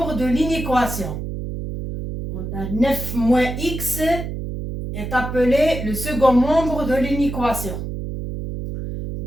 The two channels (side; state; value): right; noise; hum, 6 dB below the sound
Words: de l'inéquation. On a 9 moins x est appelé le second membre de l'inéquation.